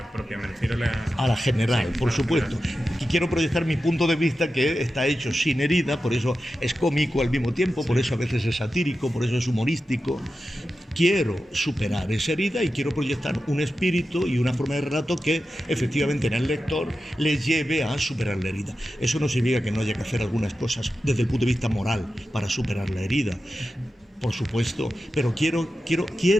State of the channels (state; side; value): normal; both; correlation 0.92